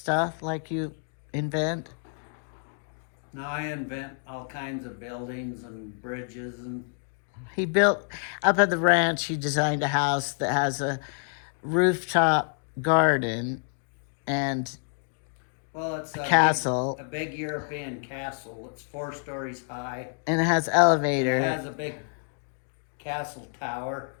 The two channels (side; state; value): right; silent; 55 dB below the other